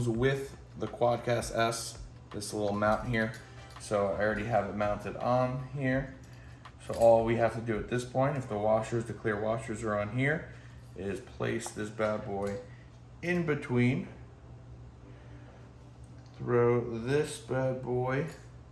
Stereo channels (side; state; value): both; identical; correlation 1.00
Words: with the Quadcast S this little mount here. So I already have it mounted on here. So all we have to do at this point, if the clear washers are on here, is place this bad boy in between. Throw this bad boy,